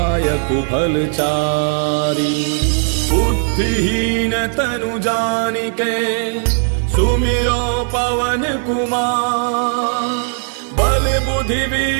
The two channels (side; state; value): left; silent; 65 dB below the other